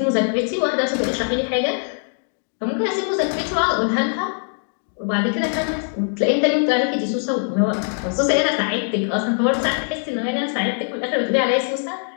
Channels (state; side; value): silent; right; 58 dB below the other